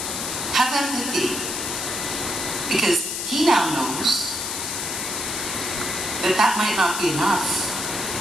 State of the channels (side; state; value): left; noise; hiss, 3 dB below the sound